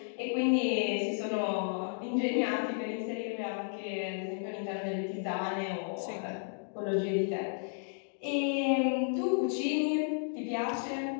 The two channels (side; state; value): right; silent; digital silence